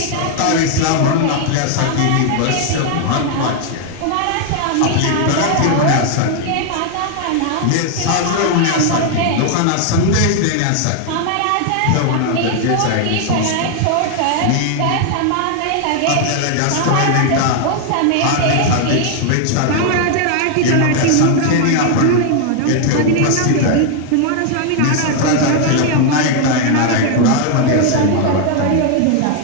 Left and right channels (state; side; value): different; both; correlation 0.00